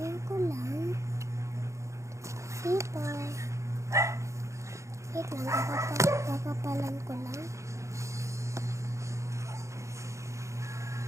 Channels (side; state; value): left; late; 0.14 ms